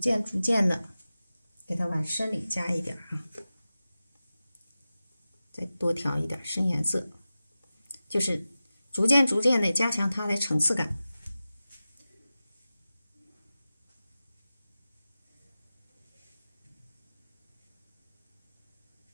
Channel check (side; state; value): both; inverted; correlation -0.95